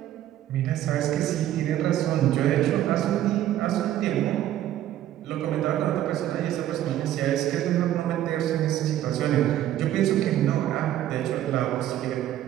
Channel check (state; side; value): quieter; left; 12.5 dB